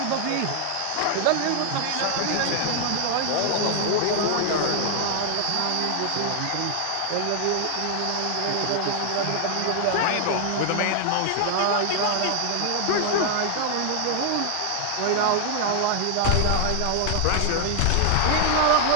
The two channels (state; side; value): different; both; correlation 0.00